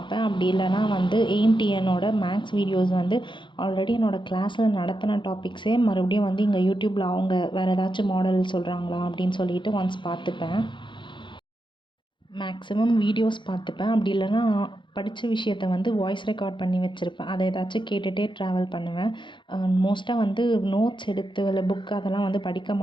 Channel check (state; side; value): late; right; 0.23 ms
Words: அப்படி இல்லைனா வந்து AIMTNோட மேக்ஸ் வீடியோஸ் வந்து ஆல்ரெடி என்னோடய கிளாஸில் நடத்தின டாபிக்ஸே மறுபடியும் வந்து இங்கே யூடியூப்பில் அவங்க வேறு ஏதாச்சும் மாடல் சொல்கிறாங்களா அப்படின்னு சொல்லிட்டு ஒன்ஸ் பார்த்துப்பேன். மேக்ஸிமம் வீடியோஸ் பார்த்துப்பேன். அப்படி இல்லைனா படித்த விஷயத்த வந்து வாய்ஸ் ரெக்கார்ட் பண்ணி வச்சுருப்பேன். அதை ஏதாச்சும் கேட்டுகிட்டே ட்ராவல் பண்ணுவேன். மோஸ்ட்டாக வந்து நோட்ஸ் எடுத்து இல்லை புக் அதெல்லாம் வந்து படிக்க